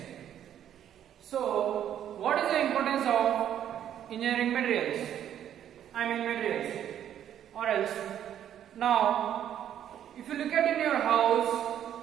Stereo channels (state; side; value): quieter; left; 10.3 dB